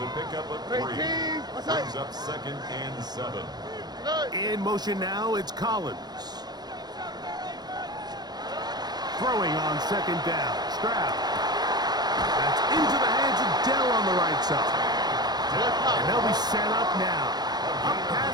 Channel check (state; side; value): late; left; 0.20 ms